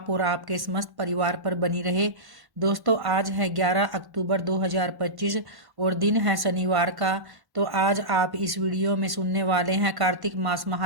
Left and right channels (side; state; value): left; late; 1.1 ms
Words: और आपके समस्त परिवार पर बनी रहे। दोस्तों, आज है 11 अक्टूबर 2025 और दिन है शनिवार का। तो आज आप इस वीडियो में सुनने वाले हैं कार्तिक मास